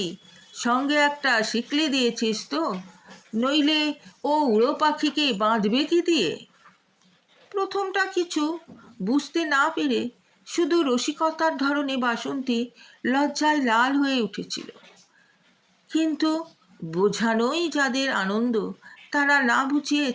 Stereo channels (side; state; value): both; identical; correlation 1.00